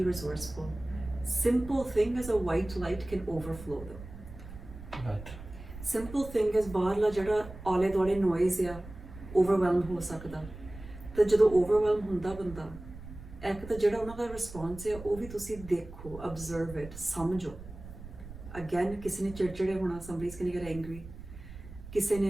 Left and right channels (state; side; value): noise; right; rumble, 14 dB below the sound